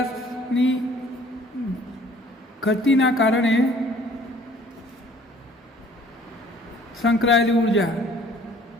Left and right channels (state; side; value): normal; both; correlation 0.55